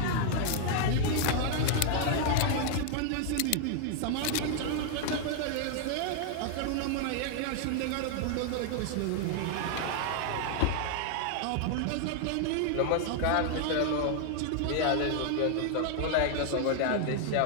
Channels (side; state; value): both; different; correlation 0.00